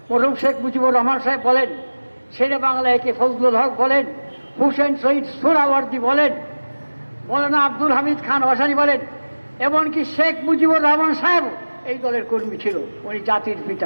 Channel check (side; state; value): both; inverted; correlation -1.00